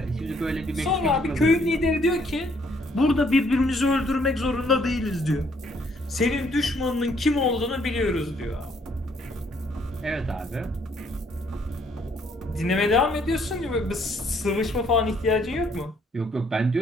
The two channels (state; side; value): normal; both; correlation 0.66